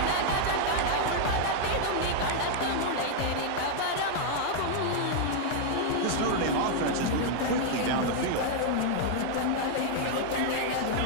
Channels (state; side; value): different; both; correlation 0.00